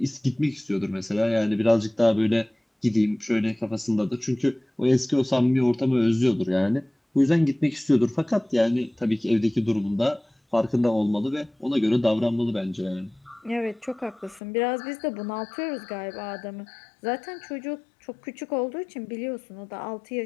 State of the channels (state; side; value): drops out; right; at 14.4 s